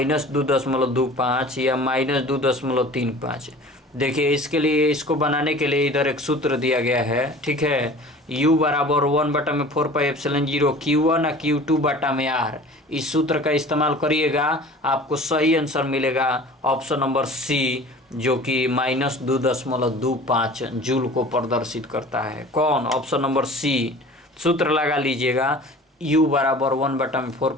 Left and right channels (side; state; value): both; normal; correlation 0.43